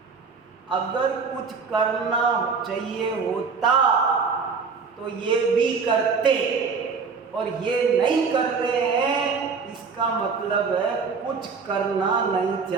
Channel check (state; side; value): quieter; left; 5.2 dB